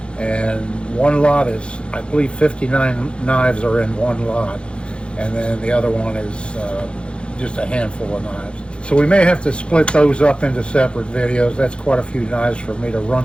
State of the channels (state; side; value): late; right; 0.057 ms